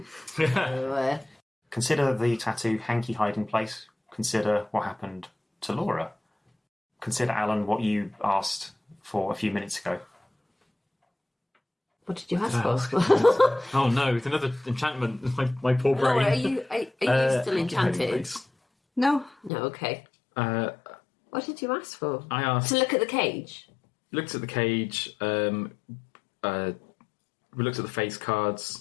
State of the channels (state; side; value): drops out; right; at 19.5 s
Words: So, Consider the tattoo hanky hiding place. Consider what happened to Laura. Consider, Alan, what you asked for a few minutes ago. what did you ask for? Oh no, it's another enchantment. My poor brain. Laura, are you still Hanky hiding enchanted? place. No. No. Okay. What did you ask for? I asked. To look at the cage. Looked at the cage. We looked at the face